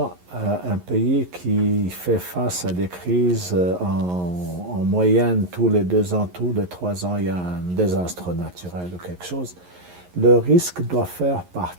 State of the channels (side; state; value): left; late; 11 ms